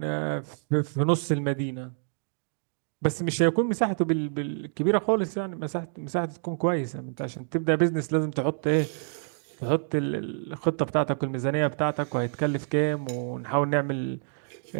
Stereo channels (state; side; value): silent; left; digital silence